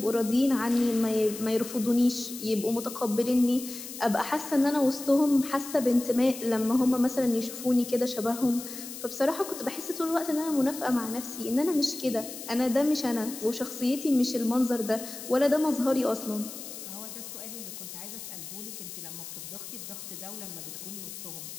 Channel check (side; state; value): left; noise; hiss, 11 dB below the sound